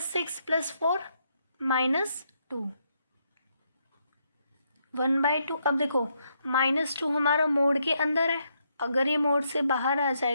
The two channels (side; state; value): both; inverted; correlation -0.77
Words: + 4 -2। 1/2। अब देखो -2 हमारा मोड के अंदर है, अगर ये मोड से बाहर आ